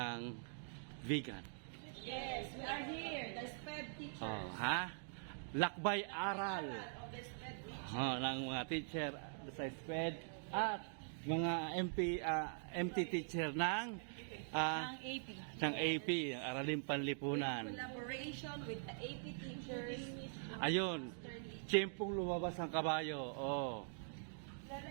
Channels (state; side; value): silent; left; digital silence